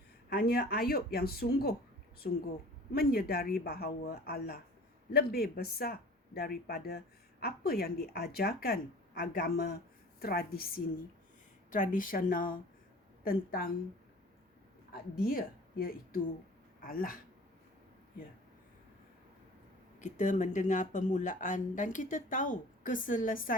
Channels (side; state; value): both; normal; correlation 0.44